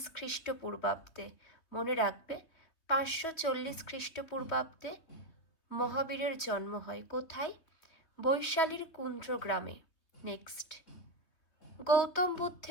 খ্রিস্টপূর্বাব্দে। মনে রাখবে ৫৪০ খ্রিস্টপূর্বাব্দে মহাবীরের জন্ম হয়। কোথায়? বৈশালীর কুন্দ্রগ্রামে। নেক্সট গৌতম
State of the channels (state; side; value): late; right; 3.5 ms